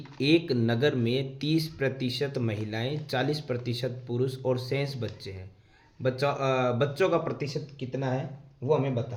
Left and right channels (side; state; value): both; identical; correlation 1.00